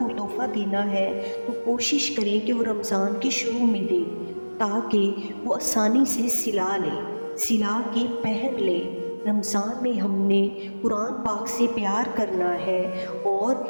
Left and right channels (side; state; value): both; inverted; correlation -1.00